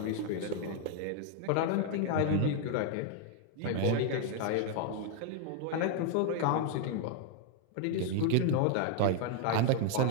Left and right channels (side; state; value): both; different; correlation 0.00